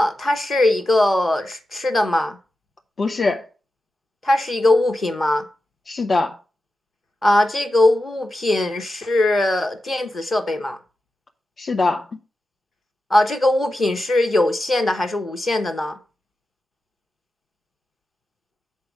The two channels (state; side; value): normal; both; correlation 0.91